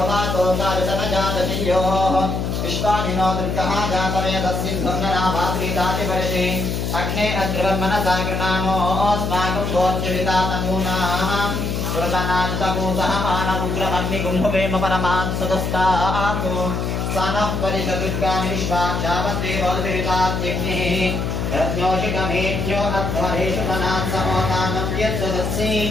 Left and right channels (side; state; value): left; noise; hum, 1 dB below the sound